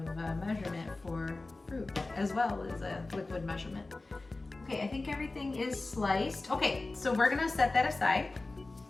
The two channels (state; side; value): quieter; right; 3.2 dB